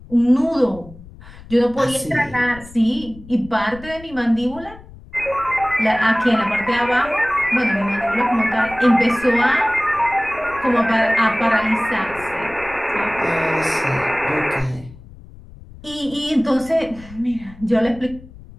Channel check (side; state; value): left; noise; rumble, 19 dB below the sound